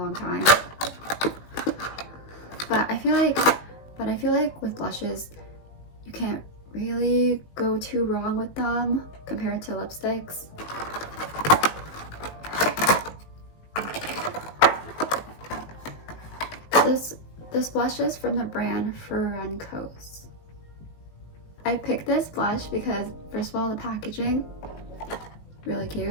time. But I feel like with blushes, you can't really go too wrong with them compared to lipsticks. This blush is from the brand Ferencos. I picked this blush because first of all, the packaging, really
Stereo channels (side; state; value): right; late; 19 ms